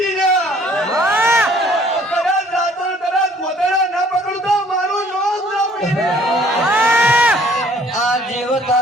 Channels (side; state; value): both; normal; correlation 0.58